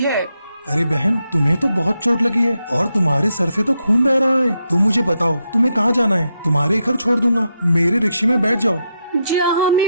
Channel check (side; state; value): both; inverted; correlation -0.83